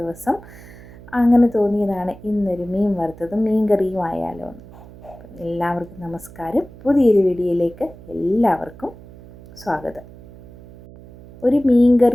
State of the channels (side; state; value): right; noise; hum, 19 dB below the sound